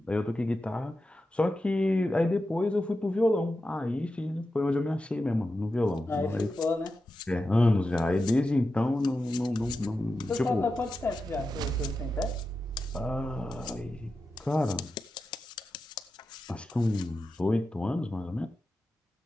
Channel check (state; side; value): normal; both; correlation 0.91